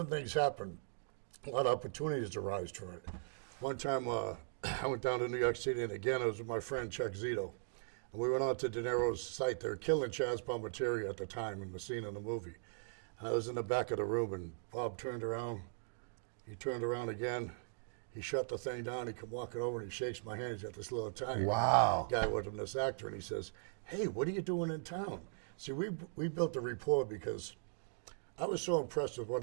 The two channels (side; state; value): left; silent; digital silence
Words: things happen. A lot of opportunities arise from it. One time I went down to New York City, and again, I was with my friend Chuck Zetro. And we went on to De Niro's site. They were killing Chaz Palminteri at the time in the scene in the movie. And I was in the back of the room, and Bob turned around. He turned around again. He shut the thing down. He come walking over, and he shakes my hand. He's got this little Italian guy with him, this actor, and he says, hey, what are you doing in town? See, we built a rapport because I was so impressed with